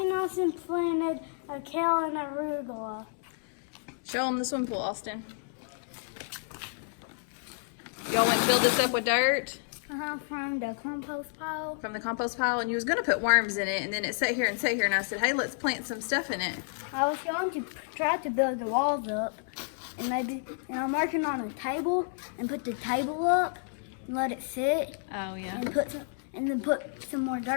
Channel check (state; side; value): silent; right; digital silence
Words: Austin planted a kale and arugula. Show them the swim pool, Austin. Y'all went and filled this up with dirt From the compost pile. from the compost pile, and you was going to put worms in it, and then it sat here, and I said, hey, let's plant some stuff in it. I was going to try to build the walls up, and I'm working on a table, and put the table up, and let it sit, Oh, yeah. and then put some more